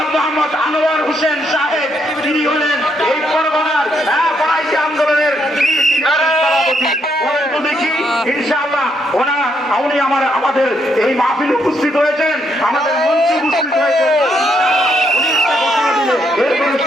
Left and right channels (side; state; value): both; normal; correlation 0.75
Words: মোহাম্মদ আনোয়ার হোসেন সাহেব তিনি হলেন এই পরগনার বাড়াইশি আন্দোলনের দেখি ইনশাআল্লাহ উনি আমাদের এই মাহফিলে উপস্থিত হয়েছেন আমাদের মঞ্চে উপস্থিত হয়েছেন উনি একটা ঘোষণা দিলে এরপরে